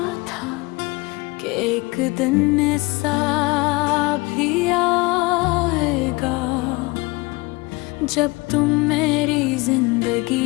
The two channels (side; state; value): right; quieter; 24.5 dB